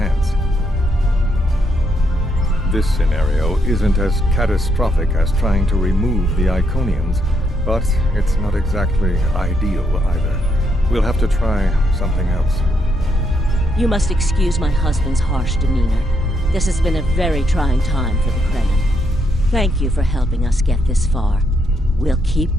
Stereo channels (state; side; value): normal; both; correlation 0.76